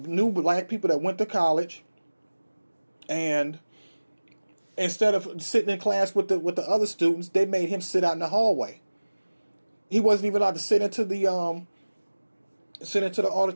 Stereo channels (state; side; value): inverted; both; correlation -1.00